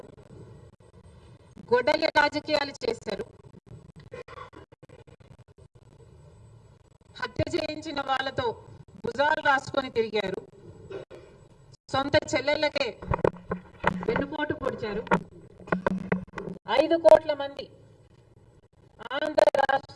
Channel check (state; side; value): identical; both; correlation 1.00